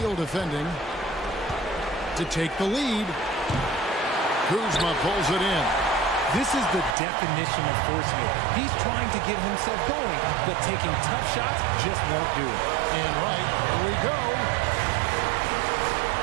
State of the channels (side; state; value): left; drops out; at 7.0 s